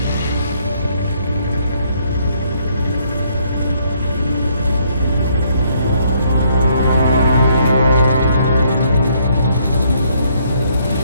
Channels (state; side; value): inverted; both; correlation -0.69